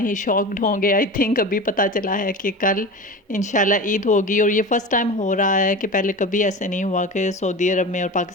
ही शॉक्ड होंगे। आई थिंक अभी पता चला है कि कल इंशाल्लाह ईद होगी और ये फ़र्स्ट टाइम हो रहा है कि पहले कभी ऐसे नहीं हुआ कि सऊदी अरब में और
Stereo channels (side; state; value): both; normal; correlation 0.30